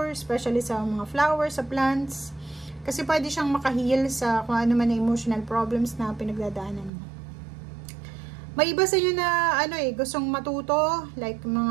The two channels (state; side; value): drops out; left; at 6.9 s